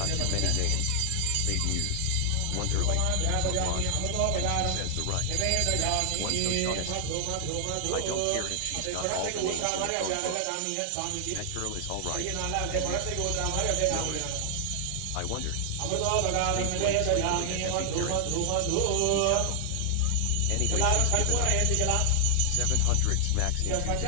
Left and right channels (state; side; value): different; both; correlation 0.00